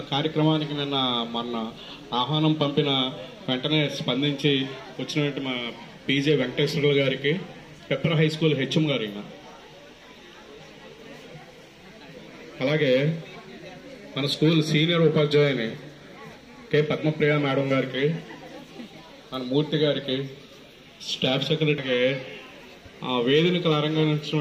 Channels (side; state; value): both; identical; correlation 1.00